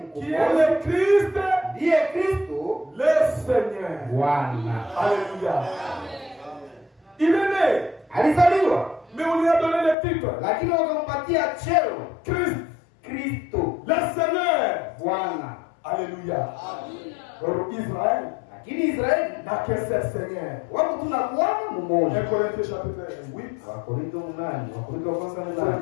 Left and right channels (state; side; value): drops out; right; at 10.0 s